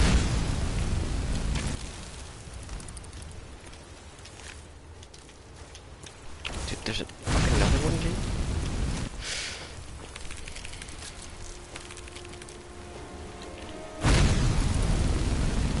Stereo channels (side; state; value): both; identical; correlation 1.00